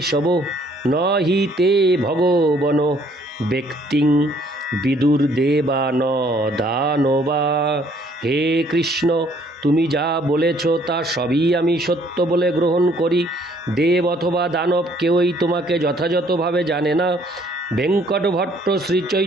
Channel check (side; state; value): both; normal; correlation 0.62